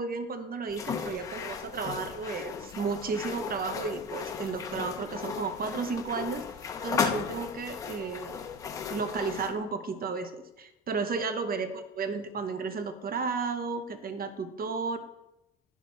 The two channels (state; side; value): normal; both; correlation 0.27